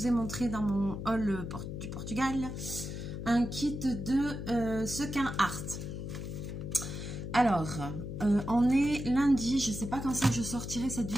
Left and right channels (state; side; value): noise; left; hum, 6 dB below the sound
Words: ai montré dans mon haul du Portugal. Un kit de sequin art. Alors on est lundi, je sais pas quand c'est que je sortirai cette